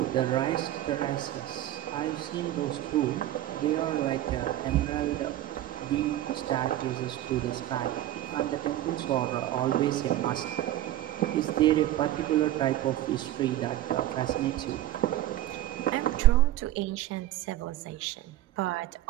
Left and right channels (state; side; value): quieter; left; 13.7 dB